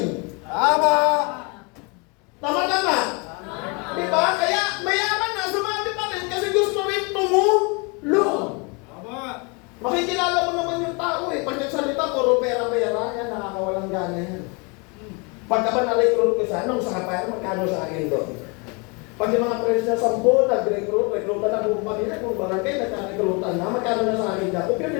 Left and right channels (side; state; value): right; quieter; 30.9 dB